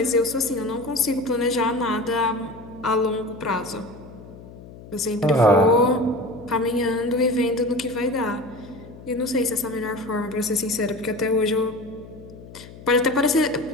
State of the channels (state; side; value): noise; left; hum, 17 dB below the sound